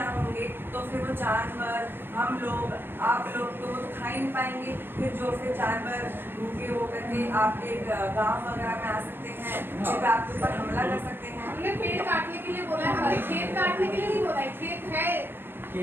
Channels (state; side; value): late; left; 0.10 ms